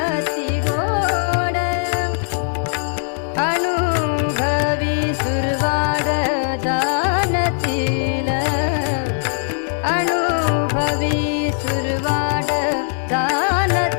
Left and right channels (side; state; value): right; silent; digital silence